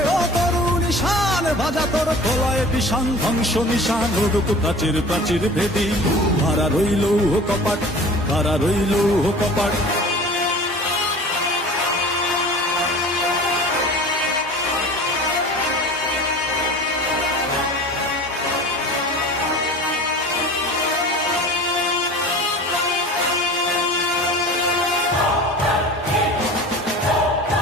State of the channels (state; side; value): normal; both; correlation 0.40